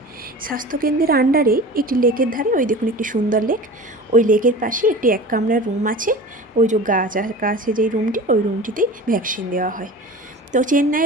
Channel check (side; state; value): both; normal; correlation 0.36